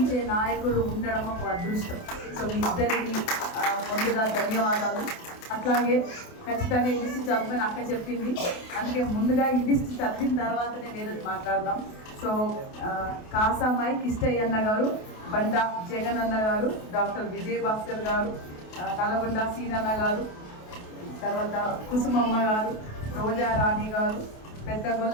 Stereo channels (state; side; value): late; right; 28 ms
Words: నాయకులు ఉండడం ఒక అదృష్టం. సో మీ ఇద్దరికి ముందుగా ధన్యవాదాలు. అట్లాగే ఖచ్చితంగా ఈ లిస్ట్ చదవమని అక్క చెప్పింది, అందుకే ముందుగా ఈ లిస్ట్ చదివిన తర్వాతనే వేరేది మాట్లాడదాం. సో కాసామాయి కిష్టయ్య అన్న గారు, బండా జగన్ అన్న గారు, డాక్టర్ విజయ్ భాస్కర్ గారు, నల్గొండ సీనన్న గారు, తర్వాత కుసుమమ్మ గారు, రోజా రాణి గారు,